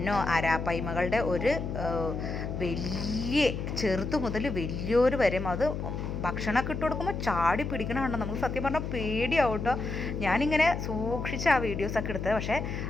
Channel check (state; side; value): noise; left; hum, 4 dB below the sound